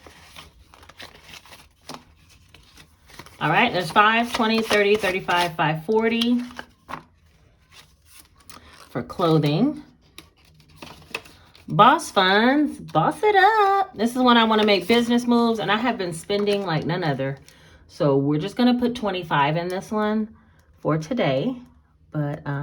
All right, there's 5, 20, 30, 35, 540. for clothing. Boss funds, boss it up. This is when I want to make business moves, and I have been spending like none other. So we're just going to put 25 in this one for today. But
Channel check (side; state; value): both; identical; correlation 1.00